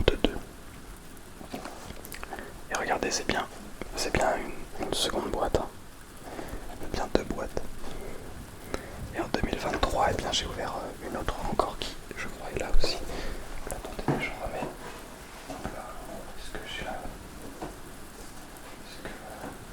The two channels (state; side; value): identical; both; correlation 1.00